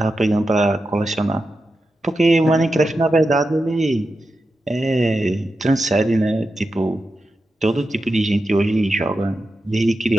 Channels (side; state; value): both; normal; correlation 0.90